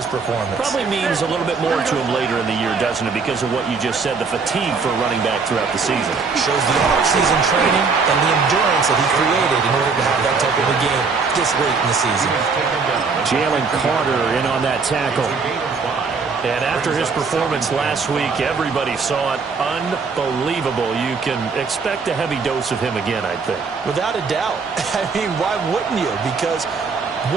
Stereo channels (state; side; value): quieter; left; 4.9 dB